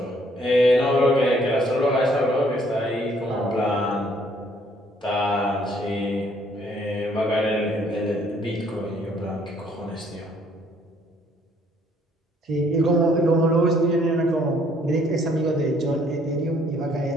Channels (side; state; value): both; normal; correlation 0.64